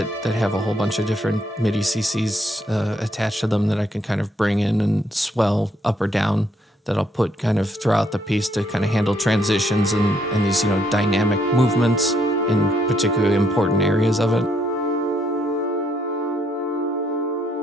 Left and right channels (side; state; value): both; normal; correlation 0.72